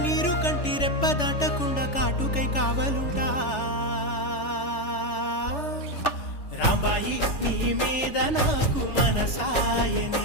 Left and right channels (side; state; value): right; late; 3.4 ms